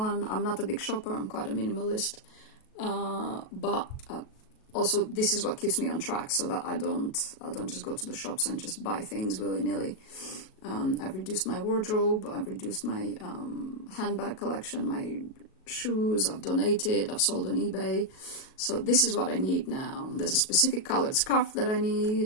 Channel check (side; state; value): right; late; 37 ms